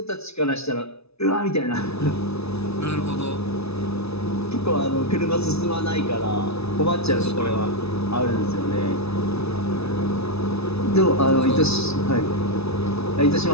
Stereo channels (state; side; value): late; right; 0.79 ms